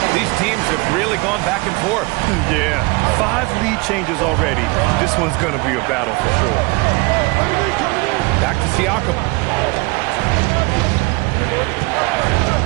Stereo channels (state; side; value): quieter; left; 26.2 dB